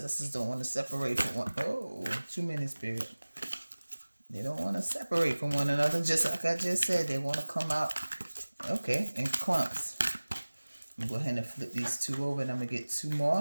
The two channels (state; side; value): inverted; both; correlation -1.00